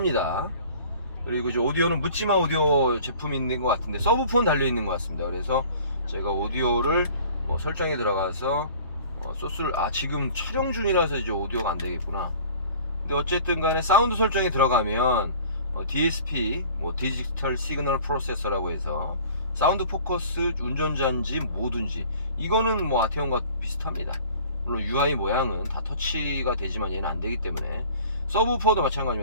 그리고 이제 오디오는 묻지마 오디오 제품이 있는 것 같은데 서브폰 달려 있는 것 같습니다. 그래서 제가 오디오를 설정에 들어가서 소스를 지금 촬영 중이라서 이제 오디오가 안 되겠구나. 근데 어쨌든 간에 사운드 설정에 들어가면 DSP 디지털 시그널 프로세서라고 해서 사운드 포커스 운전자인지 뭐든지 이거는 뭐 아테온과 비슷합니다. 물론 UI 모양은 다 터치가 되지만 얘는 안 되기 때문에. 서브우퍼도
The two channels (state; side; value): inverted; both; correlation -0.47